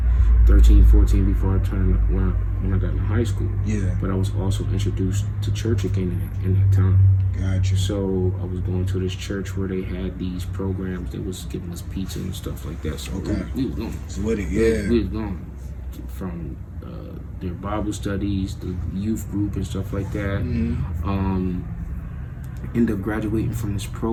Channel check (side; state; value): both; identical; correlation 1.00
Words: 13, 14, before I turned when I got in high school. Yeah. But I was also introduced to church again in that time. Gotcha. So I was going to this church where they had these programs. They was giving us pizza and stuff like that. So we was going. So what? We was going from their Bible studies, the youth group and stuff like that. End up graduating from this